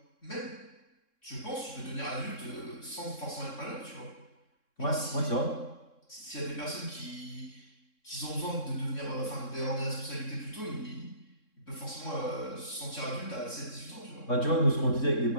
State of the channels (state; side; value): late; right; 3.7 ms